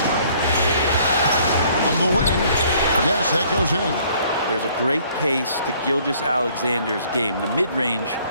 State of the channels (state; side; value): inverted; both; correlation -0.60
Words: On the wing. Yes, that goes in. There's a great pace to Gilgeous-Alexander's game. The mid-range